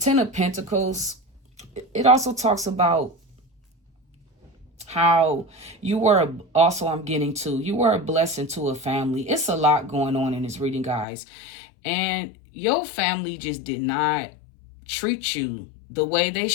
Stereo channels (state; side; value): drops out; right; at 11.1 s